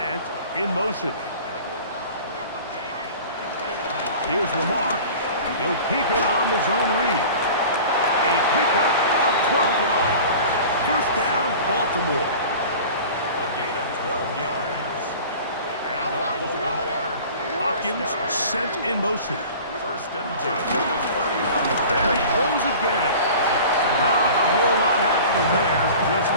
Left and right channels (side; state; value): both; inverted; correlation -0.40